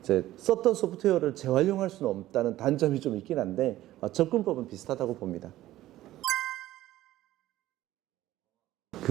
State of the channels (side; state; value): left; quieter; 15.0 dB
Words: 이제 썼던 소프트웨어를 재활용할 수는 없다는 단점이 좀 있긴 한데 접근법은 비슷하다고 봅니다.